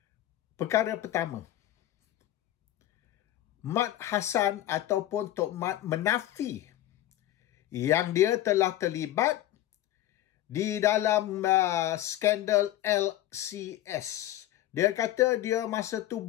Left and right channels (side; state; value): right; quieter; 13.7 dB